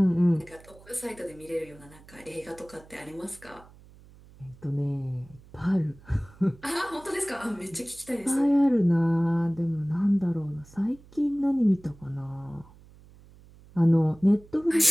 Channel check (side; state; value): right; noise; hum, 23 dB below the sound